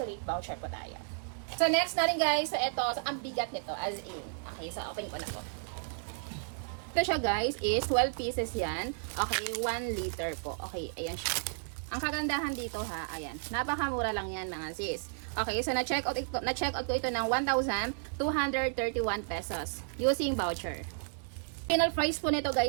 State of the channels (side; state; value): left; silent; digital silence